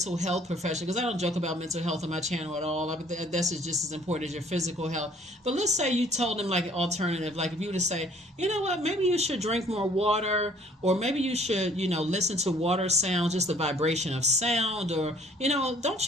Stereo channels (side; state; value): both; normal; correlation 0.57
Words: health professional, because I don't joke about mental health on my channel at all. That's just as important as your physical health. But let's say you told them like an alternative, like if you were to say, you know what, maybe you should drink more water, or maybe you should, listen to water sounds, just the vibration of sound, or, don't